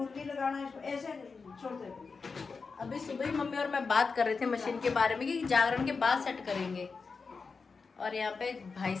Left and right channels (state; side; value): quieter; right; 4.8 dB